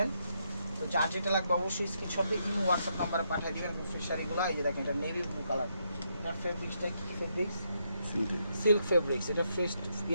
তো যার যেটা লাগবে অবশ্যই স্ক্রিনশট দিয়ে ইমো হোয়াটসঅ্যাপ নাম্বারে পাঠিয়ে দেবেন। মুফির শাড়িগুলো এই যে দেখেন, এটা নেভি ব্লু কালার। এটা ফেব্রিক্সটা কি ফেব্রিক্স? Silk fabrics. এটা ফ্রেশ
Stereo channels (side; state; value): both; inverted; correlation -0.78